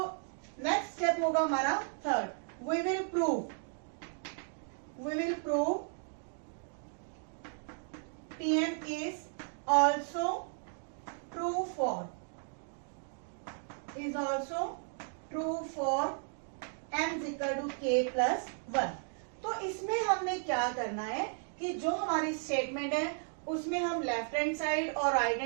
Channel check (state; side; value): silent; left; 55 dB below the other